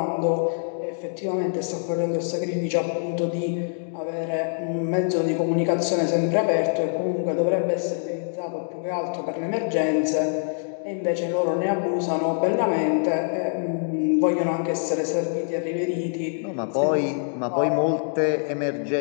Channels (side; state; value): right; silent; digital silence